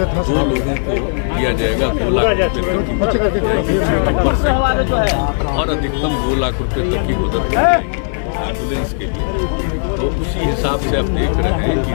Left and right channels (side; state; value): right; silent; digital silence